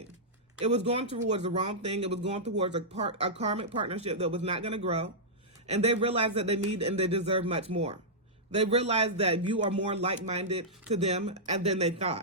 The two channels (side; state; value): both; normal; correlation -0.12